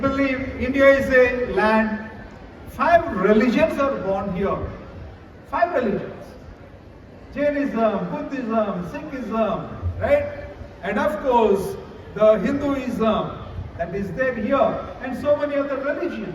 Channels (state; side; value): identical; both; correlation 1.00